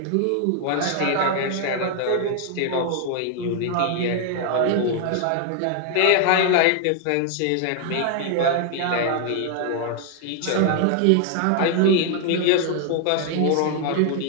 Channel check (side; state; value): both; different; correlation 0.00